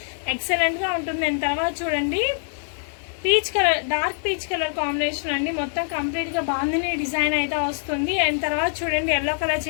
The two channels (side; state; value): right; silent; 63 dB below the other